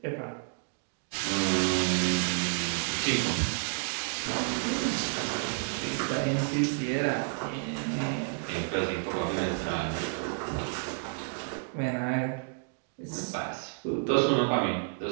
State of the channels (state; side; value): silent; left; 58 dB below the other